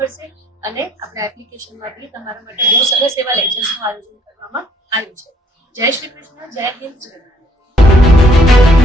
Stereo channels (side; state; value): both; normal; correlation 0.64